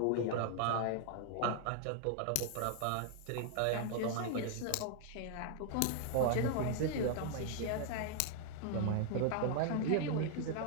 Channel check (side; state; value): both; different; correlation 0.00